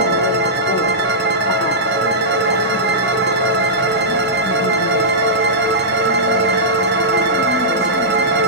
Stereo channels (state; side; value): normal; both; correlation -0.14